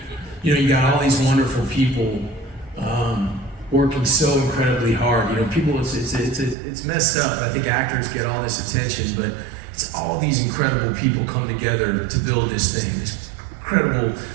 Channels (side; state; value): left; drops out; at 6.6 s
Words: you know, you got all these wonderful people working so incredibly hard. You know, people, it's messed up. I think actors get all this attention, but it's all these incredible people come together to build this thing. These incredible